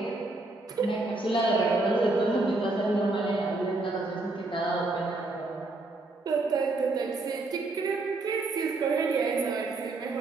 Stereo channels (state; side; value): quieter; left; 3.1 dB